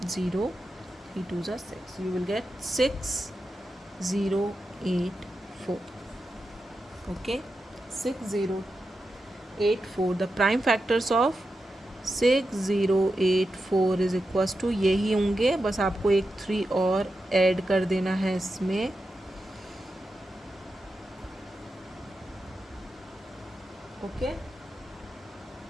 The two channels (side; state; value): both; normal; correlation 0.89